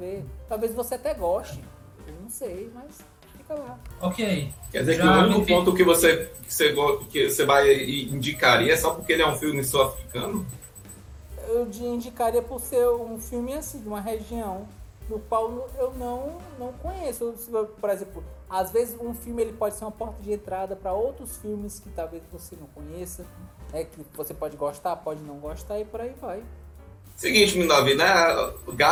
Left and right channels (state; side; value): identical; both; correlation 1.00